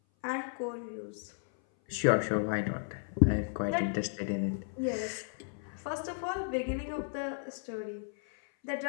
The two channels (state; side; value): silent; right; 55 dB below the other